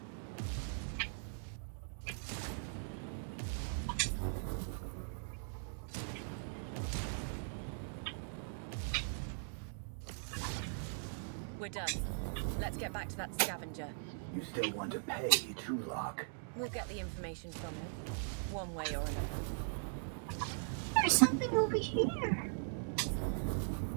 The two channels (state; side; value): silent; left; digital silence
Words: We're done. Let's get back to that scavenger. You still want to pay Trulock? We'll get the information from him, one way or another. There's something over here.